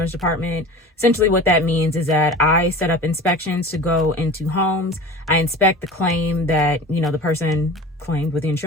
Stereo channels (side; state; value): both; normal; correlation 0.37